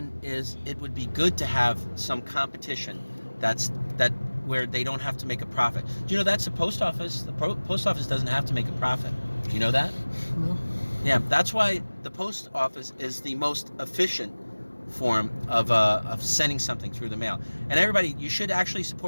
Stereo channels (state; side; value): inverted; both; correlation -1.00